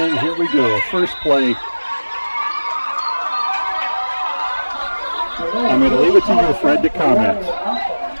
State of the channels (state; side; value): inverted; both; correlation -1.00